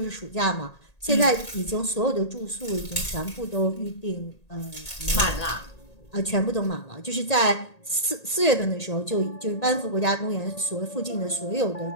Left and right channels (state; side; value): late; right; 1.8 ms